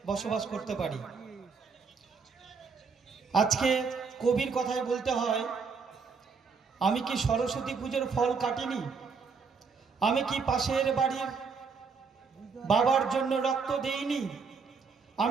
বসবাস করতে পারি। আজকে কবির কথায় বলতে হয়, আমি কি সরস্বতী পুজোর ফল কাটিনি? আমি কি পাশের বাড়ির বাবার জন্য রক্ত দেইনি?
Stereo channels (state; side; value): quieter; left; 5.3 dB